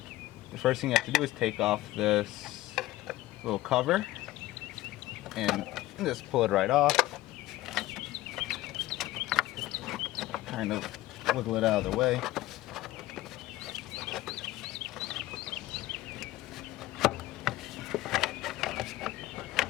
The first thing you have to do is take off this little cover and just pull it right off. Kind of wiggle it out of the way.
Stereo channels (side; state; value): right; quieter; 17.0 dB